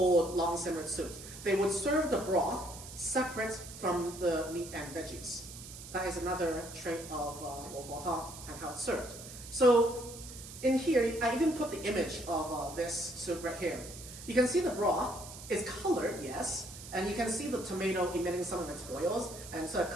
long simmered soups. They would serve the broth separate from the meat and veggies. That is another trait of lo fo tang and how it's served. So in here, I even put the image of this soup right here. You can see the broth is colored, yes, and you can see the tomato emitting some of its oils and sort of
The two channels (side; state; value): right; noise; hiss, 13 dB below the sound